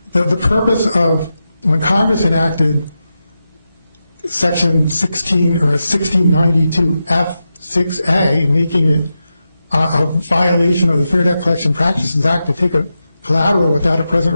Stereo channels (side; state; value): both; inverted; correlation -0.89